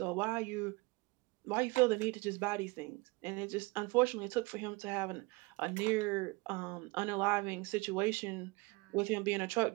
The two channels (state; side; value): quieter; left; 25.2 dB